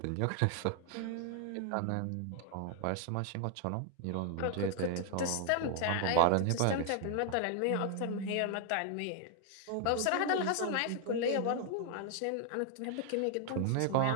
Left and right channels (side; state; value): both; different; correlation 0.00